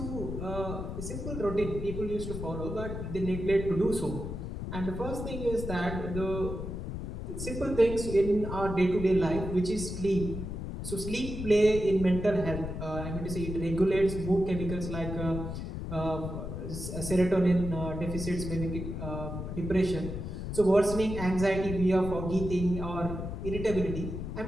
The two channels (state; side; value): noise; left; rumble, 6 dB below the sound